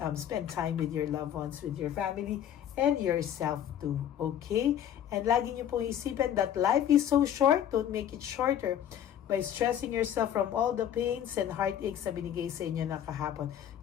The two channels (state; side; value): quieter; right; 10.1 dB